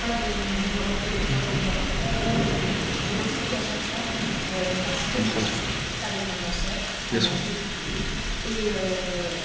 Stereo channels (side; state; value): both; identical; correlation 1.00